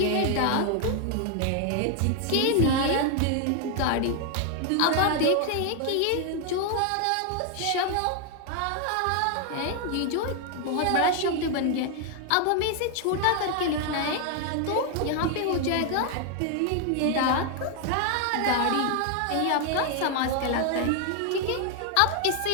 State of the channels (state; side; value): different; both; correlation 0.00